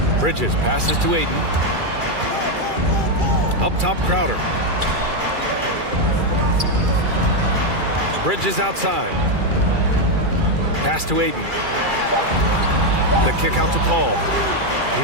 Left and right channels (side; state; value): left; late; 2.4 ms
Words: Bridges passes to Ayton. Up top, Crowder. Bridges outside. Pass to Ayton. The kick out to Paul.